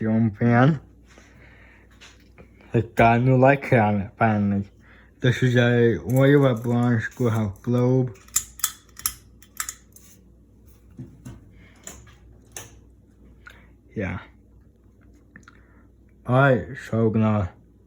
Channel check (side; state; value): both; identical; correlation 1.00